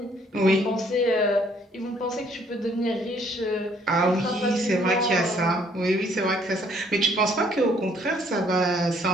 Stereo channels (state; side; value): normal; both; correlation 0.63